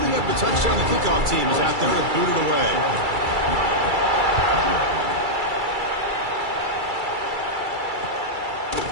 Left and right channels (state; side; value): late; left; 2.3 ms